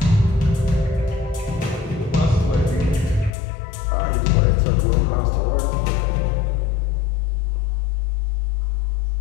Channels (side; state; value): right; drops out; at 3.4 s